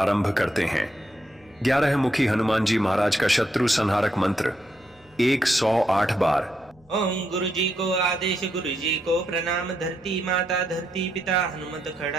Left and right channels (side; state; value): left; noise; hum, 30 dB below the sound